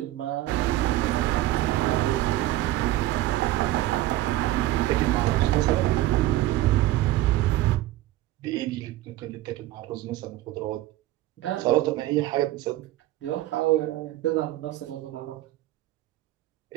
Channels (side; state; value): left; quieter; 15.6 dB